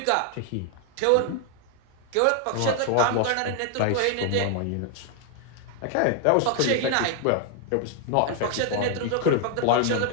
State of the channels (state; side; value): different; both; correlation 0.00